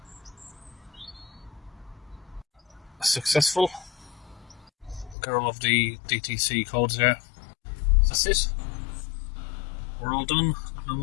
Successful. Got all of the DTC codes there. That's it. We're all done. No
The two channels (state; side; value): drops out; right; at 5.2 s